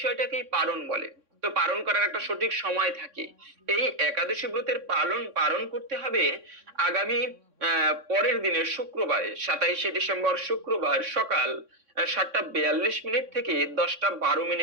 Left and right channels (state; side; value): late; left; 3.6 ms